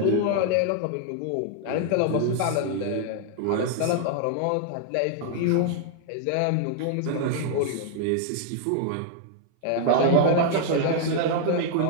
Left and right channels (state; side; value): different; both; correlation 0.00